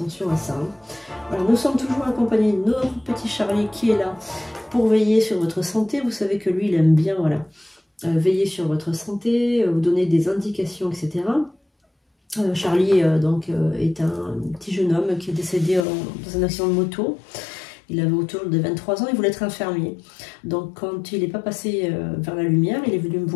à ça. Alors nous sommes toujours accompagnés de notre petit Charlie qui est là pour veiller sur votre santé. Vous savez que lui il aime bien voilà, veiller sur votre santé, vous donner des indications, etc. Charlie est un petit jeune homme qui est décédé dans un accident de moto. Il avait autour de 23 ans, il voulait être infirmier. Donc quand il n'est pas passé vers la lumière, il est venu me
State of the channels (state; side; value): drops out; right; at 15.9 s